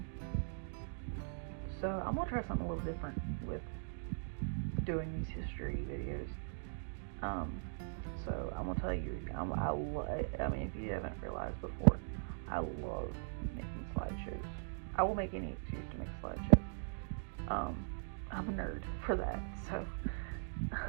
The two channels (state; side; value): silent; left; digital silence